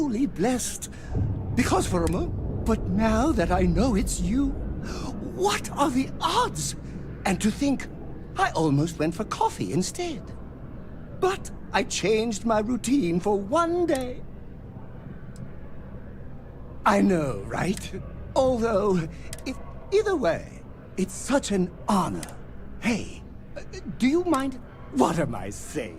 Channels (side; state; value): both; identical; correlation 1.00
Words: blessed. Because for a moment... But now that I know it's you, what are the odds? And to think, I almost went for coffee instead. But I changed my routine for one day. I know, right? Although, either way, it's such an honor. Hey, do you mind? What am I